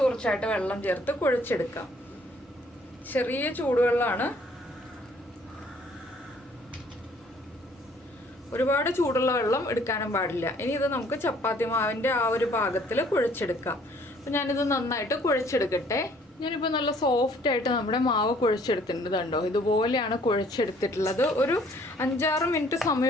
വെള്ളം ചേർത്ത് കുഴച്ചെടുക്കാം. ചെറിയ ചൂടുവെള്ളമാണ്, ഒരുപാട് ചൂടുള്ള വെള്ളം എടുക്കാനും പാടില്ല. ഇനി ഇത് നമുക്ക് ചപ്പാത്തി മാവിൻ്റെ ആ ഒരു പാകത്തിൽ കുഴച്ചെടുക്കാം. അപ്പോൾ ഞാനിത് നന്നായിട്ട് കുഴച്ചെടുക്കട്ടെ. ഞാനിപ്പോൾ നല്ല സോഫ്റ്റായിട്ട് നമ്മുടെ മാവ് കുഴച്ചെടുത്തിട്ടുണ്ട്. കണ്ടോ, ഇതുപോലെയാണ് കുഴച്ചെടുത്തിട്ടുള്ളത്. ഒരു 5-6 മിനിറ്റ്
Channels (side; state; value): both; normal; correlation 0.60